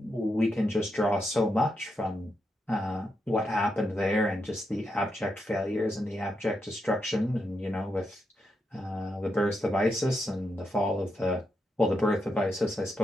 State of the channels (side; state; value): both; normal; correlation 0.83